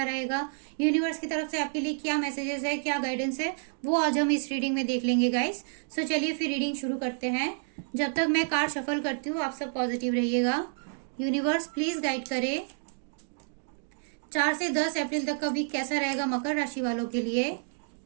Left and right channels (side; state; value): left; silent; 58 dB below the other